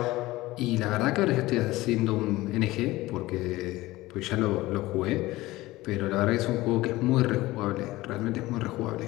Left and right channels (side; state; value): right; quieter; 18.6 dB